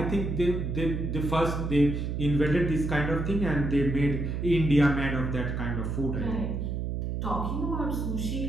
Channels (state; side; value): noise; right; hum, 2 dB below the sound